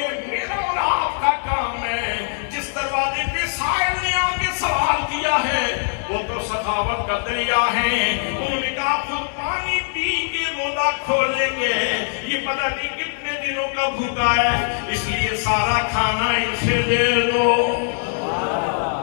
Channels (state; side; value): silent; right; digital silence